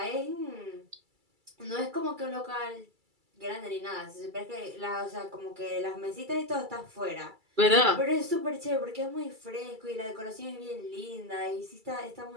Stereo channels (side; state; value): left; late; 2.3 ms